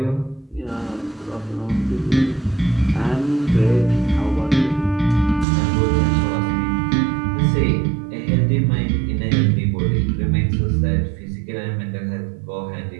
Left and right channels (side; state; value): left; drops out; at 5.5 s